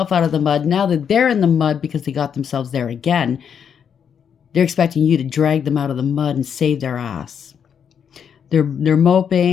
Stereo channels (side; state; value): right; quieter; 7.7 dB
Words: out of the mud. Now that they're in the mud because they got themselves there again, they're expecting you to drag them out of the mud and save their ass. They're